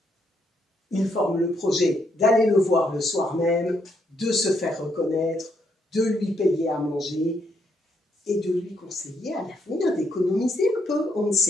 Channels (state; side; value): normal; both; correlation 0.75